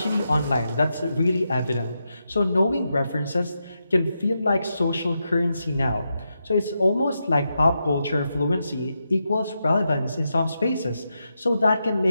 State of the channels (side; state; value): both; inverted; correlation -0.86